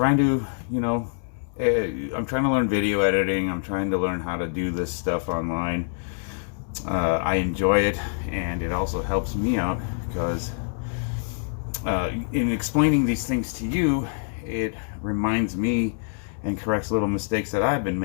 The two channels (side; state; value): right; silent; 61 dB below the other